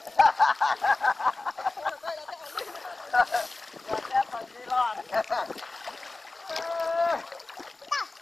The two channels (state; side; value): quieter; right; 3.3 dB